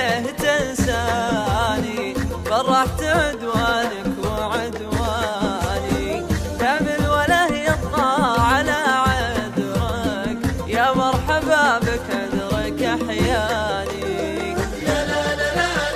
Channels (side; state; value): both; identical; correlation 1.00